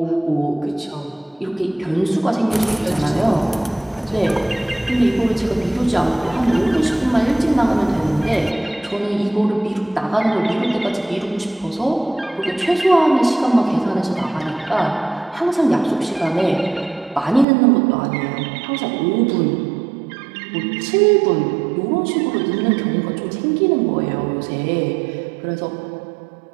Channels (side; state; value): left; drops out; at 17.4 s